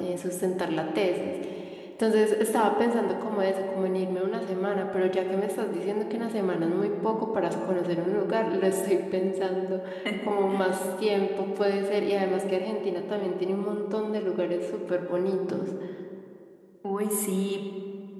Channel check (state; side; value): identical; both; correlation 1.00